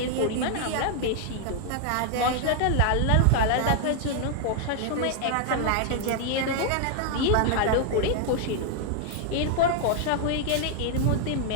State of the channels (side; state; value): both; different; correlation 0.00